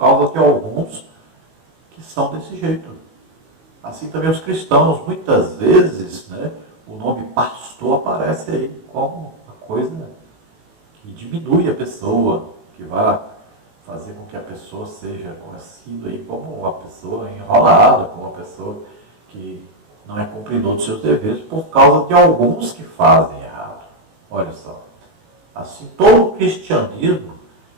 de alguns que são desse jeito. Assim também os cristãos, muitas vezes, o nome pastor aparece aí como uma coisa que diminui a pessoa, que vai fazer com que a pessoa seja conhecida aí como uma pessoa enrolada, como uma pessoa que não é cumpridor dos seus deveres por causa de alguns que fazem errado. Olha só. Assim, todo o cristianismo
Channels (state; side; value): late; left; 19 ms